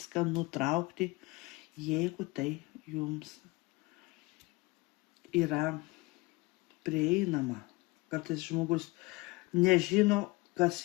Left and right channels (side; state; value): right; quieter; 23.3 dB